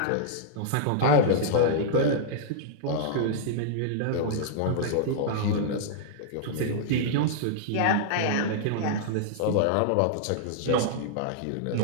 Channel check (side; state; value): both; different; correlation -0.02